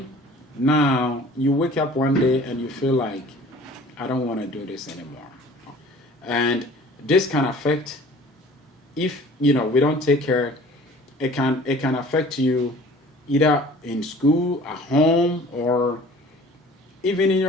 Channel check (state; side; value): normal; both; correlation 0.48